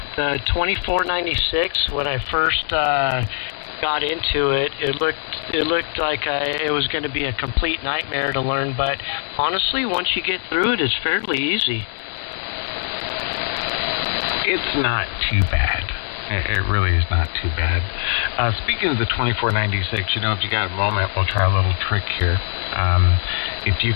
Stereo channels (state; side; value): silent; right; digital silence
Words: the 2496, when I first got into it, it looked like it was going to be a complete nightmare to learn, but honestly, once you get through it, it's fairly easy. It's not too bad. It really is not too bad. Speaking of the 2496, if you got a moment, we'll try a little trick here. If you